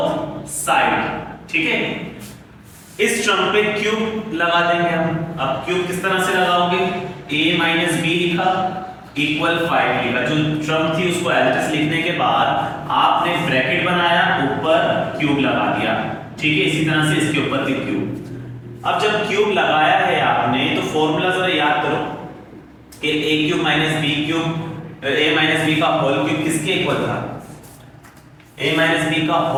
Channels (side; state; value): both; identical; correlation 1.00